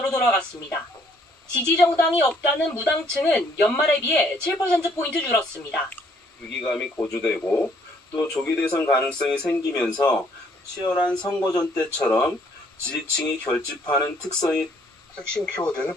돌아갔습니다. 지지 정당이 없다는 무당층은 연말에 비해 7%포인트 줄었습니다. 위기감이 고조되고 또 조기 대선 가능성이 생기면서 치열한 선거전 때처럼 지지층이 결집하는 특성이 핵심 키워드는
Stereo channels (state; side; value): normal; both; correlation 0.65